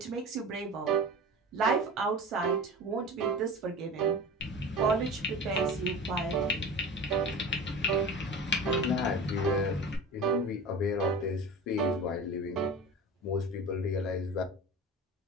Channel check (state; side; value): normal; both; correlation 0.33